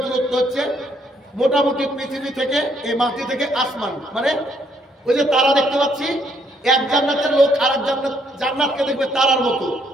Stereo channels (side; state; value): both; normal; correlation 0.70